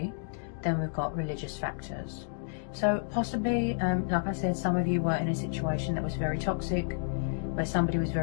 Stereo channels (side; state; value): right; silent; digital silence